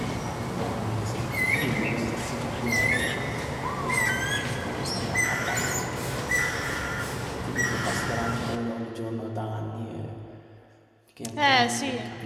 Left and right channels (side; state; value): both; identical; correlation 1.00